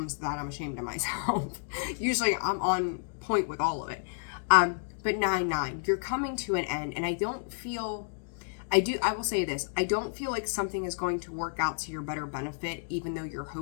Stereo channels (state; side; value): silent; right; digital silence